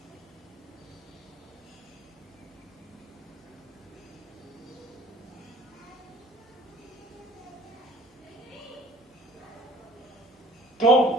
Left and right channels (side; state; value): both; normal; correlation 0.51